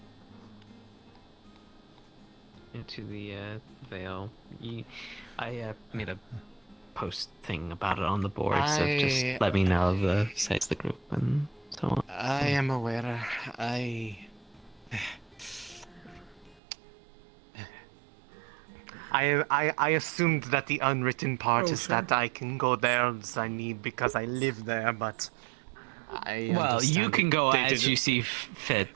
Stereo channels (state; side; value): drops out; left; at 16.6 s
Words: Into the veil. I made a post thing about it on the board, so just let me know the size of the group and so on. I am aware. I assumed that the unwritten part is that I can go there as I need because I live there, but well, you can go as you see